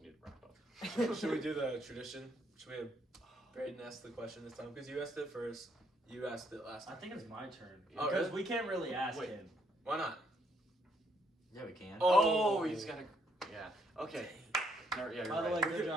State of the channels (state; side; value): normal; both; correlation 0.71